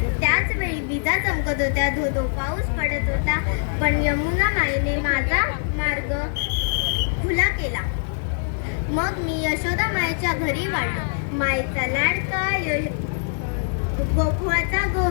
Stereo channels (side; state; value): right; silent; digital silence